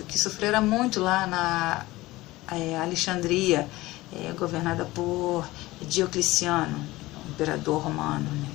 que sofrera muito lá na Alexandria, governada por Diocleciano, imperador romano.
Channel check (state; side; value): quieter; right; 18.9 dB